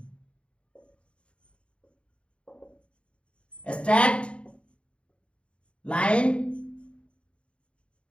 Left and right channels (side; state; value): right; late; 0.058 ms